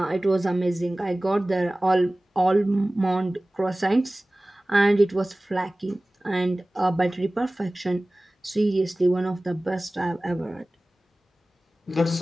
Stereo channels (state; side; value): normal; both; correlation 0.98